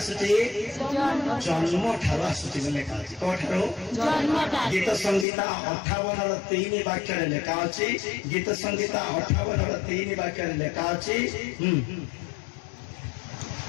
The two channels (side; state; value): right; drops out; at 5.2 s